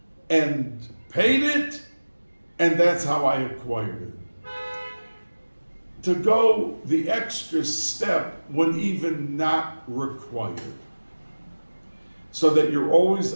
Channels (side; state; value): both; inverted; correlation -1.00